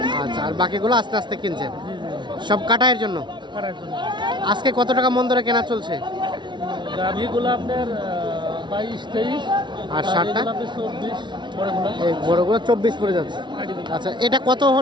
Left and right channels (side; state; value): left; late; 0.23 ms